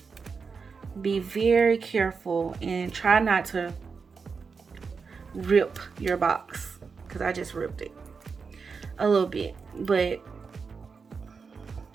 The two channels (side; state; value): left; quieter; 5.2 dB